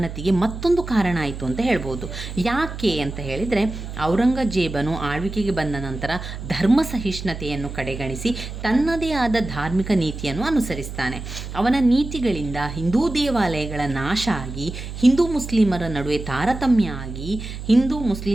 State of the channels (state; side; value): noise; right; hum, 9 dB below the sound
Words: ಮತ್ತೊಂದು ಕಾರಣ ಆಯಿತು ಅಂತ ಹೇಳ್ಬೋದು. ಯಾಕೆ ಅಂತ ಹೇಳಿದರೆ, ಔರಂಗಜೇಬನು ಆಳ್ವಿಕೆಗೆ ಬಂದ ನಂತರ ಧರ್ಮ ಸಹಿಷ್ಣುತೆಯನ್ನು ಕಡೆಗಣಿಸಿ ತನ್ನದೇ ಆದ ಧಾರ್ಮಿಕ ನೀತಿಯನ್ನು ಅನುಸರಿಸ್ತಾನೆ. ಅವನ ನೀತಿಗಳಿಂದ ಹಿಂದೂ ದೇವಾಲಯಗಳ ನಾಶ ಆಗಿ ಹಿಂದೂ ಮುಸ್ಲಿಮರ ನಡುವೆ ತಾರತಮ್ಯ ಆಗಿ